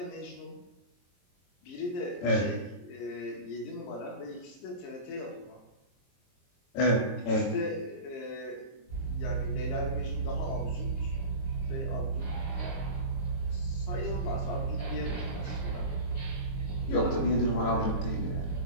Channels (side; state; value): right; late; 22 ms